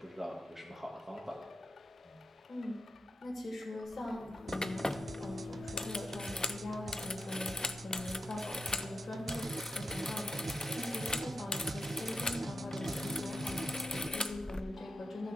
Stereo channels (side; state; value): both; normal; correlation 0.85